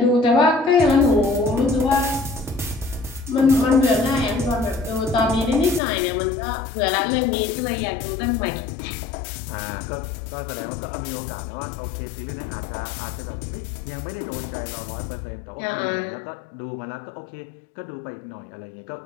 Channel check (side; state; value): right; drops out; at 5.8 s